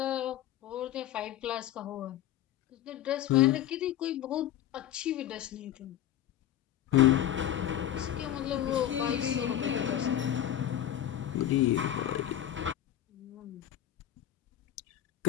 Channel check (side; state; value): right; quieter; 11.7 dB